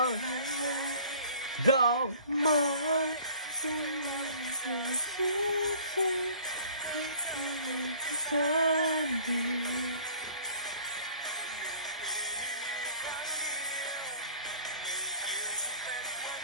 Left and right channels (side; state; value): both; inverted; correlation -0.51